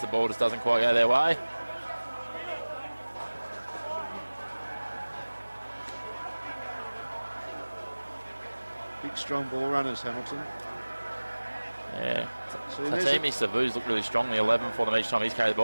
the ball just doesn't quite go their way. Big strong ball runners, Hamilton. Yeah. Tatimi Savu's looked really strong in the 11 for them each time he's carried the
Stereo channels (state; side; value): inverted; both; correlation -1.00